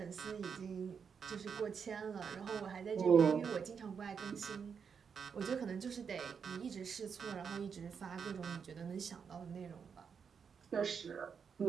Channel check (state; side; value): quieter; left; 6.5 dB